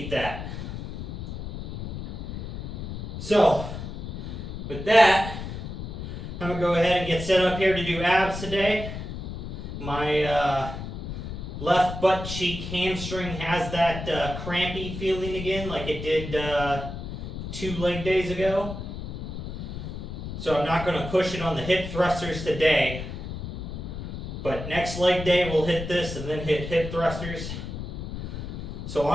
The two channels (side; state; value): left; noise; rumble, 7 dB below the sound